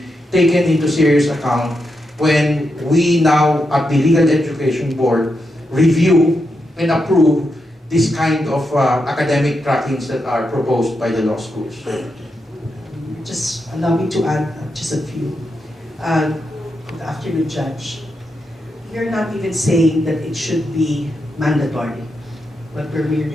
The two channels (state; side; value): normal; both; correlation 0.85